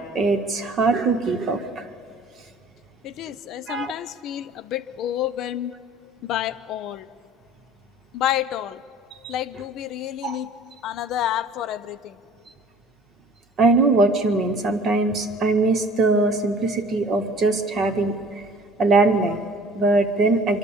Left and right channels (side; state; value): both; normal; correlation 0.49